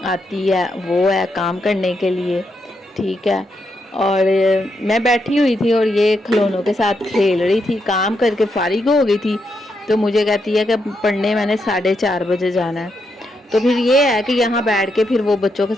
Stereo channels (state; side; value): normal; both; correlation 0.81